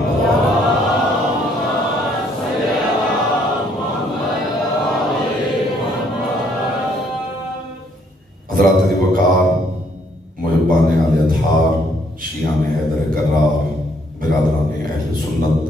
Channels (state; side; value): normal; both; correlation 0.67